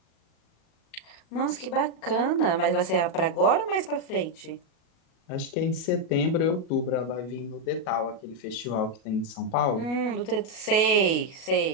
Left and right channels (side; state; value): right; late; 37 ms